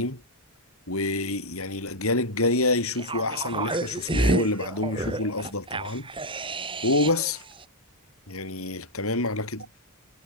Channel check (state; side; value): normal; both; correlation -0.01